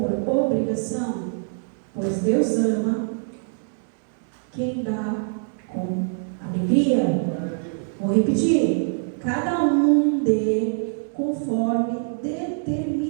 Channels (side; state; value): left; silent; 63 dB below the other